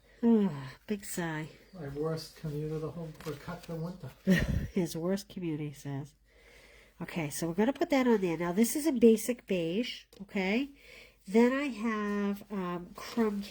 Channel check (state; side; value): identical; both; correlation 1.00